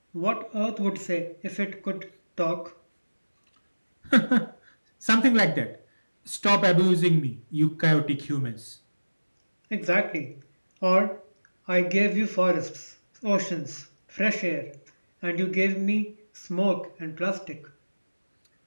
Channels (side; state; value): both; inverted; correlation -1.00